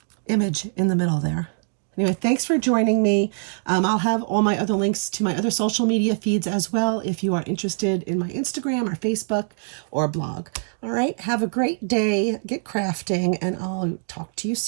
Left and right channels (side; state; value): left; silent; digital silence